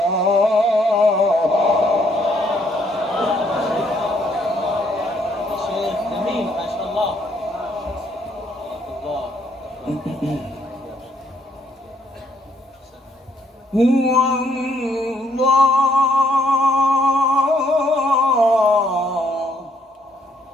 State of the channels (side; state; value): both; normal; correlation 0.69